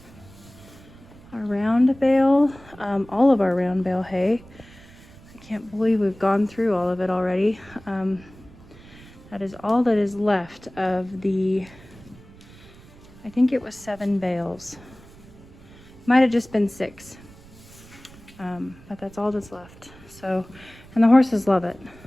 our round bale, all of our round bale hay. I can't believe we've gone through all of it already. That is all that is left of the, I think it was 7 bales. Might have just been 6. But that's all that's left. So, and the horses love it.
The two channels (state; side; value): noise; right; rumble, 22 dB below the sound